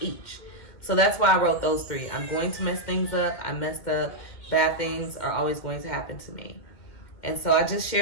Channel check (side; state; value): right; late; 2.2 ms